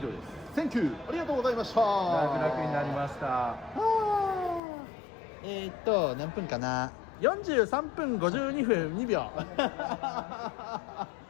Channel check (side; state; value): right; drops out; at 4.6 s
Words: トです。Thank you。ありがとうございました。楽々になりました。何分かな。43分52分2秒